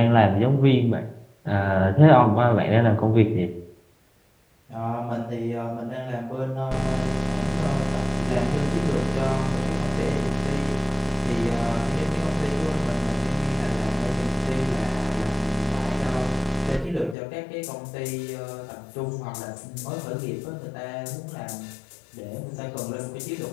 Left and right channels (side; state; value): right; drops out; at 17.2 s